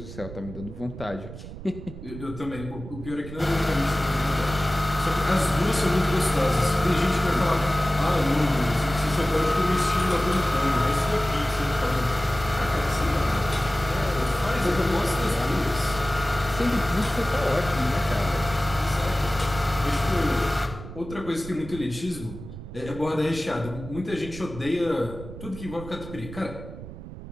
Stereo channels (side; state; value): right; noise; rumble, 12 dB below the sound